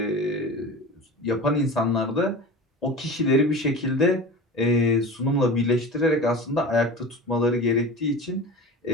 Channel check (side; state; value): both; normal; correlation 0.33